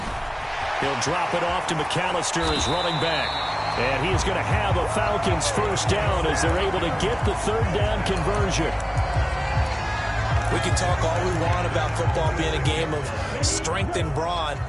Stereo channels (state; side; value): identical; both; correlation 1.00